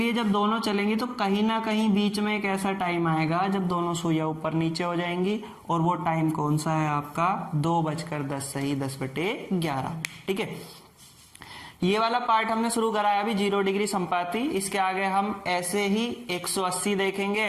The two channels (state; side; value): identical; both; correlation 1.00